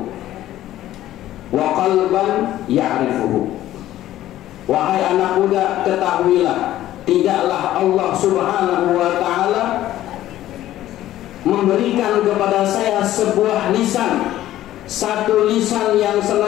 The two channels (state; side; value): quieter; right; 13.8 dB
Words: wa qalban ya'rifuhu. Wahai anak muda, ketahuilah, tidaklah Allah subhanahu wa ta'ala memberikan kepada saya sebuah lisan, satu lisan yang